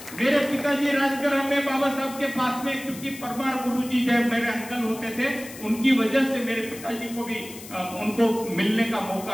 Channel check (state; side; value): noise; left; hiss, 15 dB below the sound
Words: मेरे पिताजी राजगृह में बाबा साहब के पास में, क्योंकि परमार गुरुजी जब मेरे अंकल होते थे, उनकी वजह से मेरे पिताजी को भी उनको मिलने का